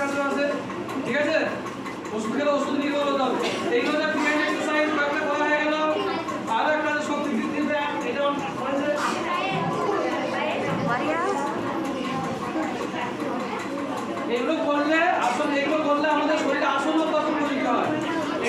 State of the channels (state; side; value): identical; both; correlation 1.00